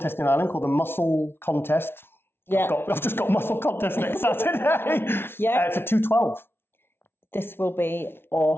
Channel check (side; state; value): right; late; 0.11 ms